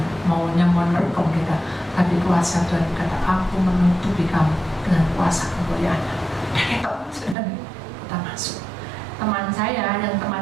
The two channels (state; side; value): drops out; left; at 7.4 s